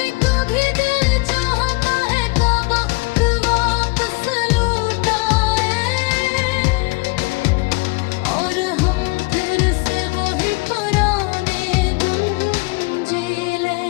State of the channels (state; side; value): quieter; right; 26.6 dB